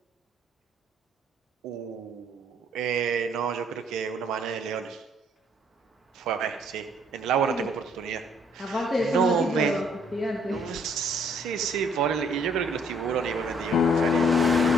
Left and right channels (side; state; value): both; normal; correlation 0.64